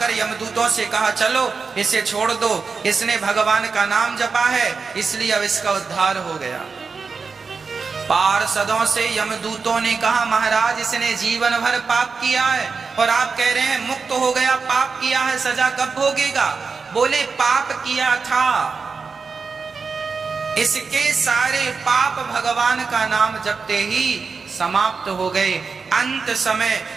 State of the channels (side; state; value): left; quieter; 4.9 dB